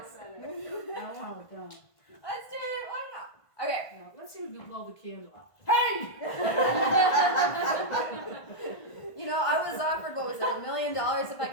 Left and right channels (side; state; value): right; late; 1.5 ms